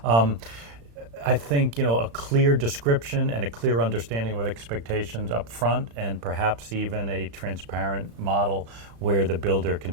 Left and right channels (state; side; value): late; left; 35 ms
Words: I think a clear description and a clear understanding of expectations up front, and perhaps even a transparent model where the builder can